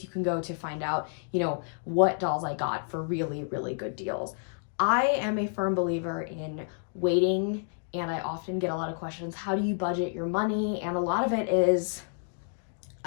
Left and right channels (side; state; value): right; silent; digital silence